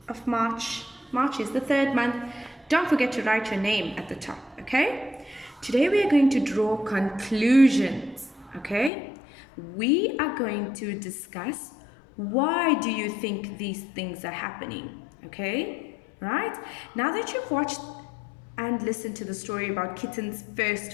of March. March is the 3rd month. Don't forget to write your name at the top, okay? Today we are going to draw conclusions, okay? We are going to discuss why do you think these things are happening, okay? Right? Now that you've watched and listened to the story about Kitten's first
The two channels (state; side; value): drops out; right; at 8.9 s